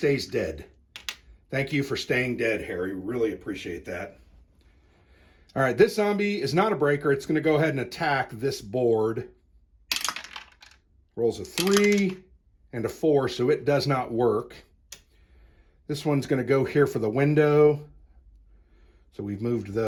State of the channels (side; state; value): both; identical; correlation 1.00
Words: dead. Thank you for staying dead, Harry. Really appreciate that. All right, this zombie is not a breaker. It's going to go ahead and attack this board. Rolls a 3 and a 4, so it does not work. This one's going to go here for the window. So we've moved